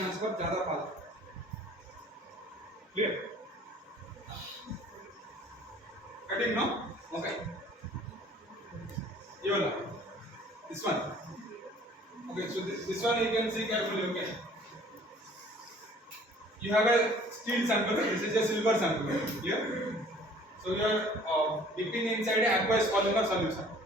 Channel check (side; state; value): both; normal; correlation 0.53